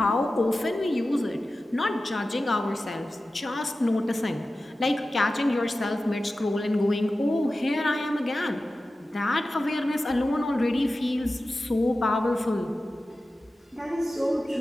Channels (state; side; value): normal; both; correlation 0.94